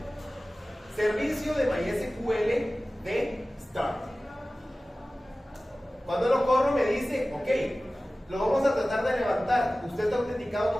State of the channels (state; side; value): normal; both; correlation 0.97